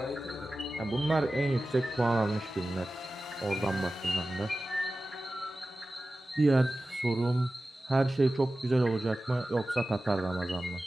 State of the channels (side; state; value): both; normal; correlation 0.95